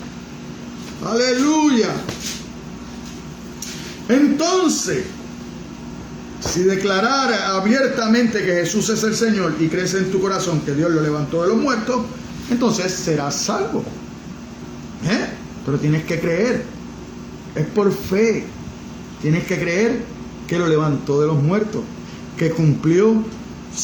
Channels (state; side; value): identical; both; correlation 1.00